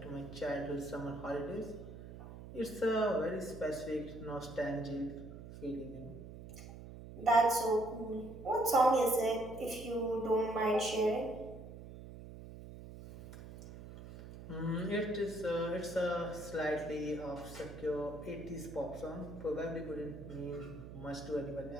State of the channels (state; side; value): noise; right; hum, 13 dB below the sound